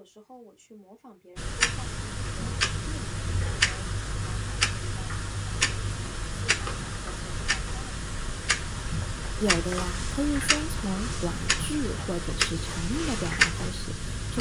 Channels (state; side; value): identical; both; correlation 1.00